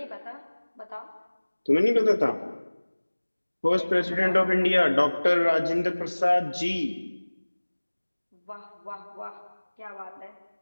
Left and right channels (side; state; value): both; inverted; correlation -1.00